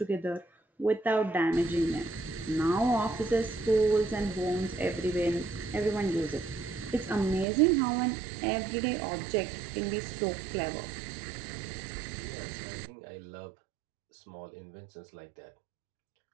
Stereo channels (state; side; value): drops out; left; at 7.5 s